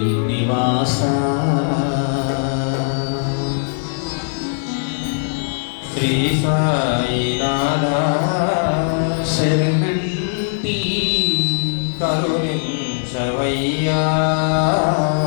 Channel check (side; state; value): right; silent; digital silence